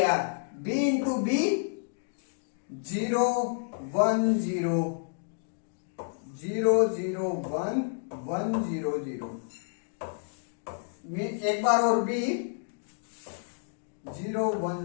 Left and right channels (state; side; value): silent; right; digital silence